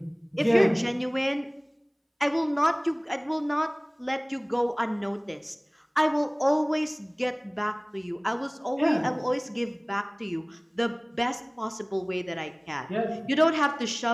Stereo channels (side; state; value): both; identical; correlation 1.00